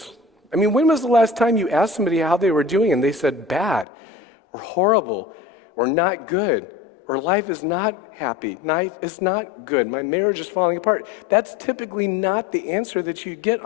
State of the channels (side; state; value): right; drops out; at 3.9 s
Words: I mean, when was the last time you asked somebody how they were doing and they said bad, or horrible, or not good, or life is not happy, life is not good, my marriage is falling apart? That's typically not the answer that you get